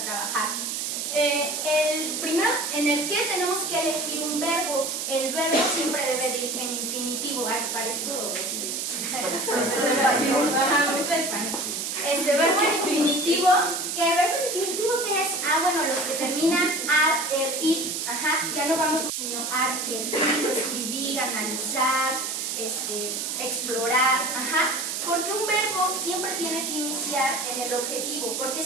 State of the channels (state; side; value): noise; right; hiss, 3 dB below the sound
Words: trabajar. El primero, en el que tenemos que elegir un verbo. El verbo siempre debe de ir en infinitivo. Parezco verbo en infinitivo. ¿Qué verbo en infinitivo qué es? Bueno, los que terminan ar, er, ir. Ya no vamos sino ar, er, ir, escribir, analizar, explorar. Porque un verbo siempre tiene que iniciar en el objetivo, porque